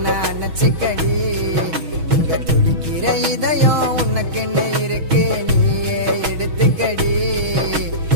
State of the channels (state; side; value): late; left; 6.2 ms